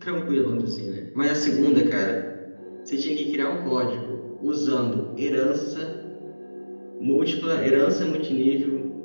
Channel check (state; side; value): inverted; both; correlation -1.00